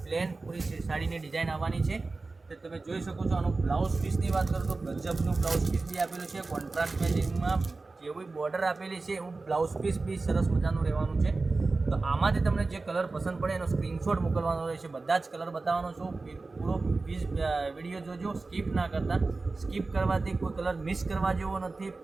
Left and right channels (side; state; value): left; quieter; 3.6 dB